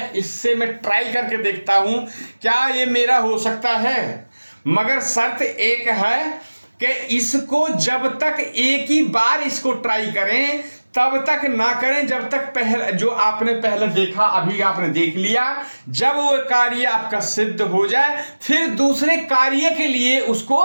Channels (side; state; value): both; inverted; correlation -1.00